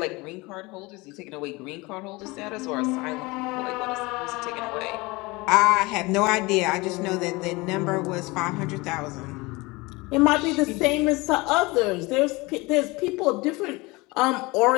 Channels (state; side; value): quieter; right; 23.7 dB